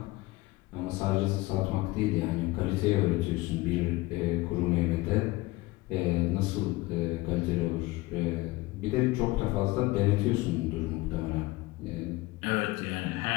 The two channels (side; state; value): right; quieter; 20.4 dB